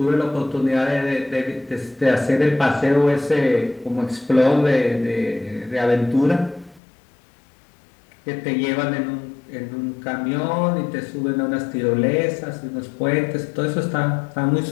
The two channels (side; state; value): right; drops out; at 6.8 s